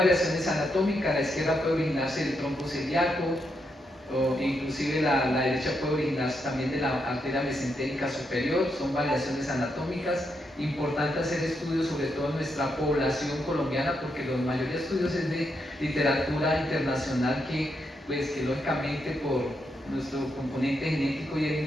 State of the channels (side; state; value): both; normal; correlation 0.81